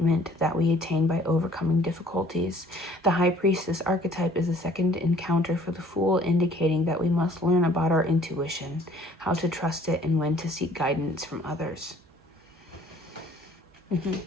that we attain by overcoming difficulties. The High Priestess archetype is the second encounter for the Fool, indicating that we must learn about our intuition, how to trust it, and when to seek guidance from others.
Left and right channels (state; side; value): normal; both; correlation 0.55